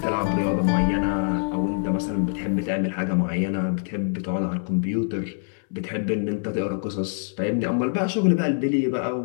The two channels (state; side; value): silent; right; 62 dB below the other